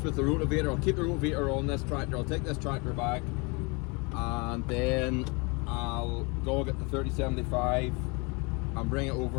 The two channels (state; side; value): quieter; right; 29.9 dB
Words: the rotivator. I'll keep the rotivator on this tractor. I'll take this tractor back and then I'll go get the 3075 and bring it